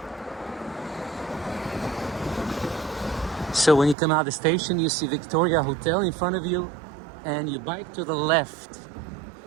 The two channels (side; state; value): left; drops out; at 4.0 s